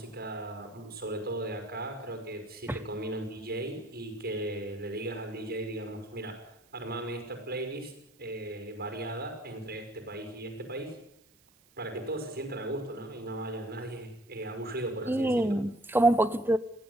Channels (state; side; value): noise; right; hiss, 30 dB below the sound